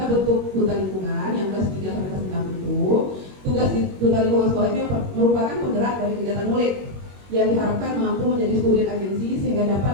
bentuk duta lingkungan yang kelas 3 sampai kelas 6 itu, tugas di duta lingkungan sekolah ini merupakan penggerak dari kegiatan murid yang diharapkan mampu menjadi student agency sehingga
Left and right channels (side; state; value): left; late; 21 ms